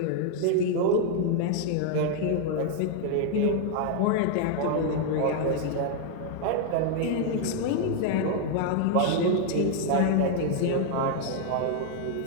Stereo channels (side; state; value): both; different; correlation 0.00